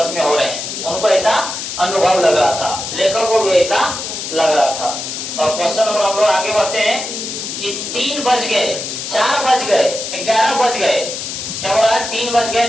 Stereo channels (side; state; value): left; noise; hiss, 6 dB below the sound